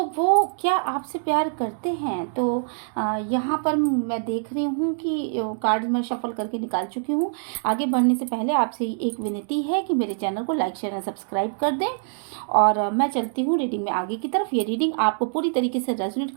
वो क्या आपसे प्यार करते हैं। तो यहाँ पर मैं देख रही हूँ कि कार्ड मैं शफल करके निकाल चुकी हूँ। आगे बढ़ने से पहले आपसे एक विनती है कि मेरे चैनल को लाइक शेयर और सब्सक्राइब कर दें। और मैं चलती हूँ रीडिंग में आगे की तरफ। ये रीडिंग आपको पूरी तरीके से रेजोनेट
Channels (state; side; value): silent; left; 62 dB below the other